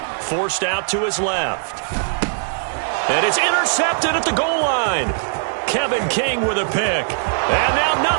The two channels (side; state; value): left; silent; digital silence